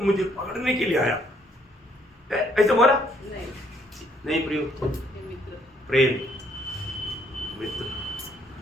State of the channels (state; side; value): normal; both; correlation 0.67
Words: मुझे पकड़ने के लिए आया, ऐसे बोला? नहीं प्रियो, प्रेम, मित्र।